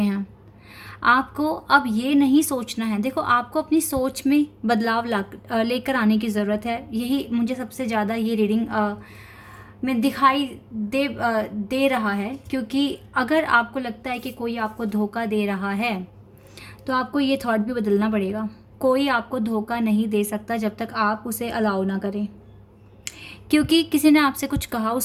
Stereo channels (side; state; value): both; identical; correlation 1.00